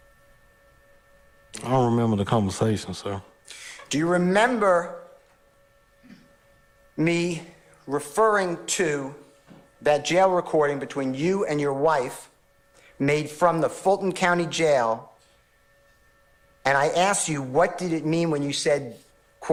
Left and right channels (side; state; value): both; identical; correlation 1.00